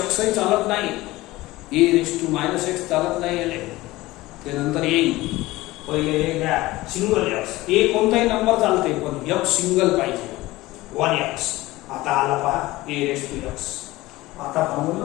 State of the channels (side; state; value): right; quieter; 18.7 dB